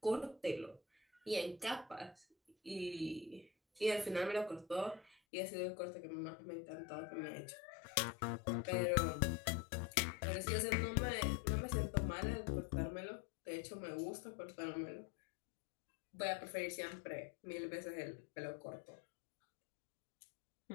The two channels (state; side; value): drops out; right; at 5.2 s